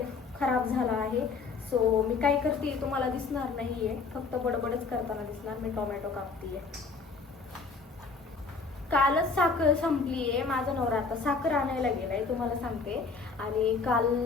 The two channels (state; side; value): quieter; right; 4.5 dB